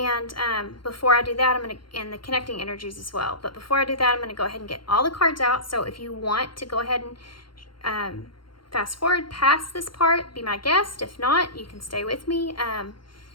before I do that, I'm going to, and the connecting energies as well. But before I do that, I'm going to go ahead and get all the cards out. So if you want to go ahead and fast forward past this part, be my guest. If not, you can stay with me.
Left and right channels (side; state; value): right; late; 0.73 ms